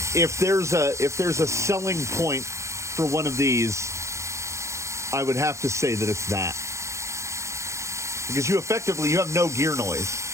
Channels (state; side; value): late; left; 0.14 ms